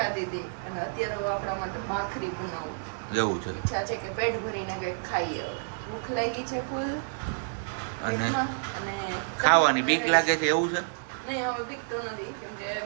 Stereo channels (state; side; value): silent; left; 58 dB below the other